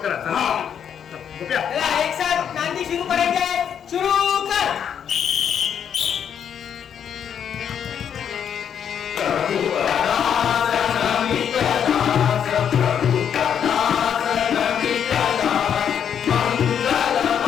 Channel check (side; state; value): right; quieter; 8.4 dB